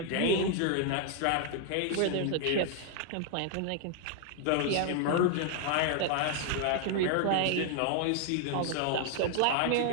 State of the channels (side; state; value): both; different; correlation 0.00